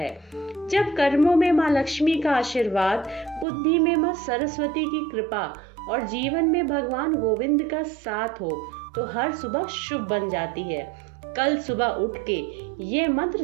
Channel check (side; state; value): left; drops out; at 3.5 s